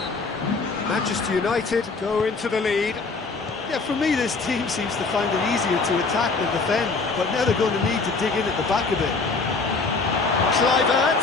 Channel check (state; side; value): quieter; right; 4.1 dB